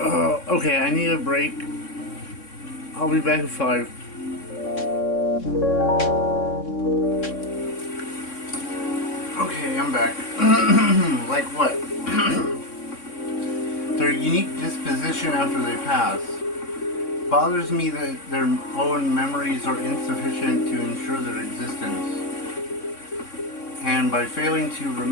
I need a break. I'll be back in 5. Okay, I'm back. Like what? Their unique disposition after they pass. Bothers me that their own memories are insufficient to ensure their existence. And by failing to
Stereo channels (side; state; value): right; late; 3.6 ms